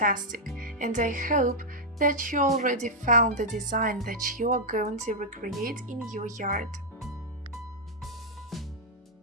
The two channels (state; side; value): normal; both; correlation -0.04